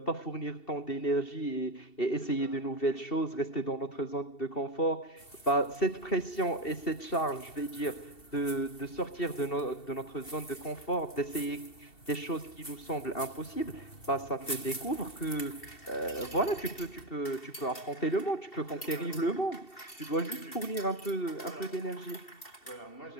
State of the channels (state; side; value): late; right; 2.7 ms